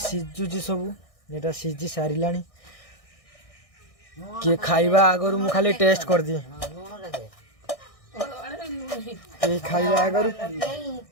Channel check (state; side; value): late; right; 1.6 ms